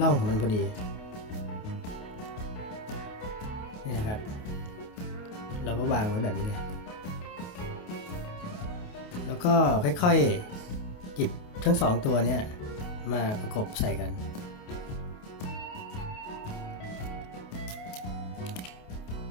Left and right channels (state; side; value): late; right; 28 ms